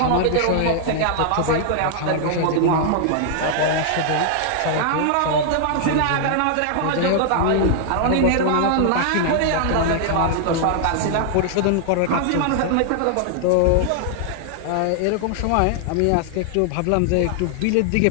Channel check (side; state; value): both; different; correlation -0.01